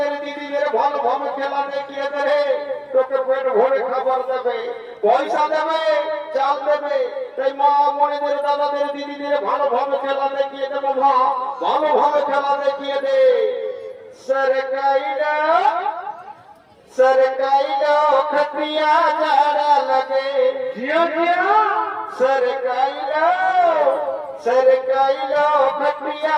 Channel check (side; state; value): both; identical; correlation 1.00